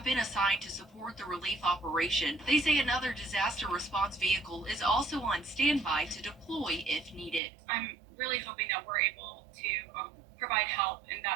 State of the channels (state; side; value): drops out; left; at 7.4 s